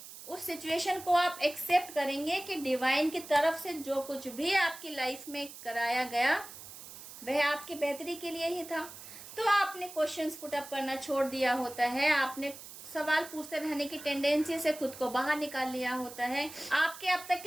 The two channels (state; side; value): noise; right; hiss, 14 dB below the sound